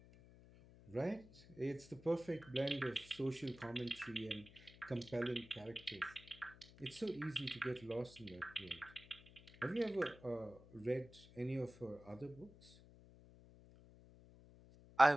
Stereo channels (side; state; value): left; noise; hum, 21 dB below the sound